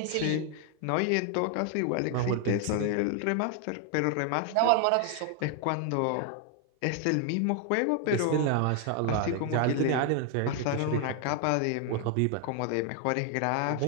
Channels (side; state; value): both; different; correlation 0.00